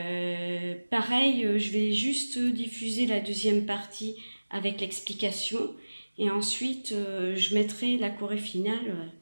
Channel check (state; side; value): inverted; both; correlation -1.00